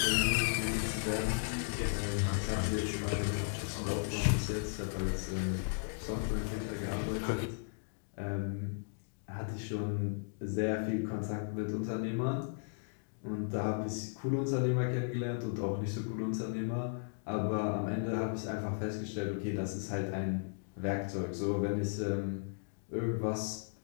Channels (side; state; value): right; silent; digital silence